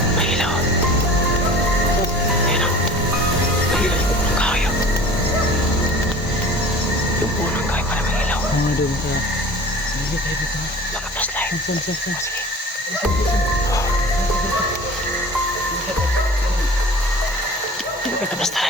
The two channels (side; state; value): both; normal; correlation 0.42